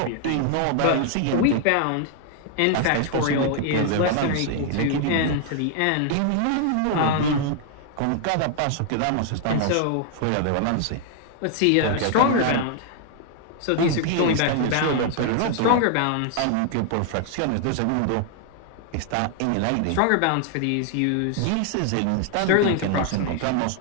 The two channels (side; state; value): both; different; correlation 0.00